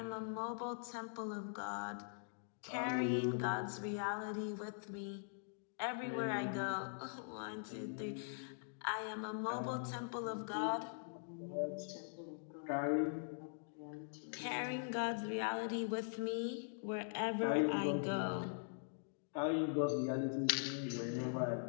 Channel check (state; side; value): silent; right; digital silence